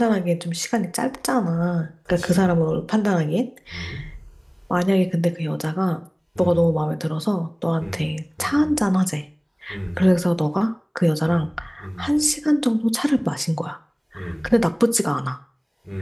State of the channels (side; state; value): both; identical; correlation 1.00